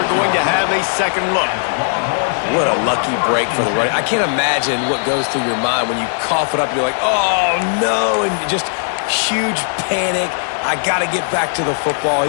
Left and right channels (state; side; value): silent; right; digital silence